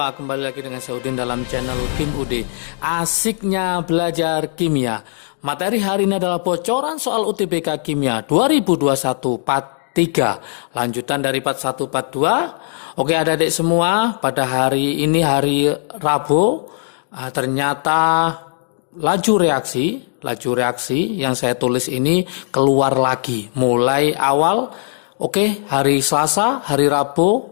kembali lagi dengan saya Udin dalam channel Kim UD. Asiknya belajar kimia. Materi hari ini adalah bocoran soal UTBK Kimia 2021 Part 3. Lanjutan dari Part 1 Part 2. Oke adik-adik semua, pada hari ini hari Rabu, ternyata laju reaksi yang saya tulis ini keluar lagi mulai awal. Oke, hari Selasa, hari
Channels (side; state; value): right; silent; digital silence